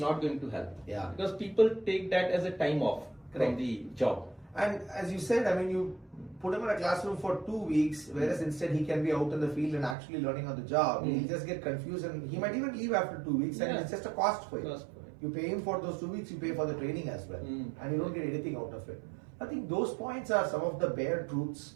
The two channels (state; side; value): drops out; left; at 10.0 s